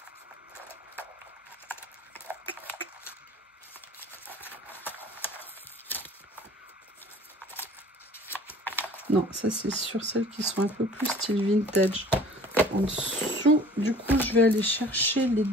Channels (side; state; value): both; normal; correlation 0.48